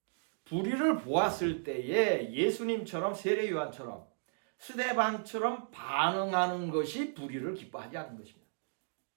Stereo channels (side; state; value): left; silent; digital silence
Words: 불의를 보았을 때에 예수님처럼 세례 요한처럼 스데반처럼 반응하는 것이 불의를 기뻐하지 않는 것입니다.